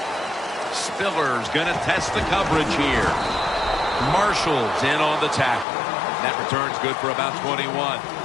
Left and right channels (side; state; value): right; drops out; at 5.7 s